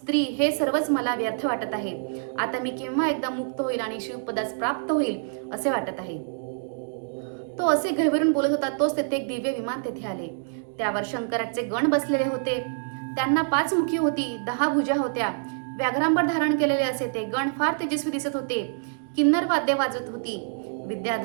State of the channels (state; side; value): silent; left; digital silence